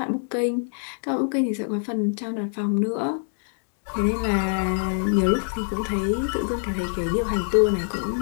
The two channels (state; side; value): silent; right; digital silence